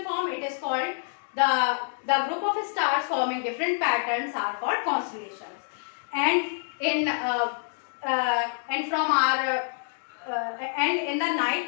form, it is called the group of stars forming different patterns are called constellations. And in from our and in the night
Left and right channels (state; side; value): silent; right; 60 dB below the other